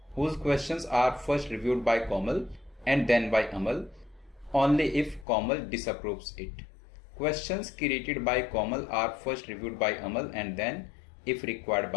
whose questions are first reviewed by Komal and then by Amal, only if Komal disapproves it. Questions created by Komal are first reviewed by Amal and then if required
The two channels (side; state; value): right; drops out; at 5.2 s